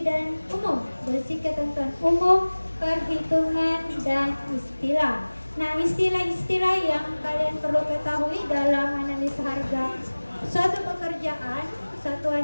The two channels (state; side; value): inverted; both; correlation -1.00